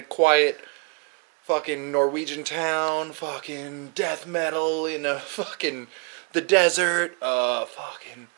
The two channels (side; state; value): left; quieter; 33.1 dB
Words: quiet fucking Norwegian town, fucking death metal in a fucking the desert, fucking